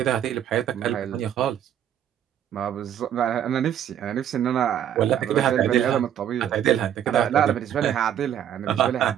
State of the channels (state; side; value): quieter; left; 10.2 dB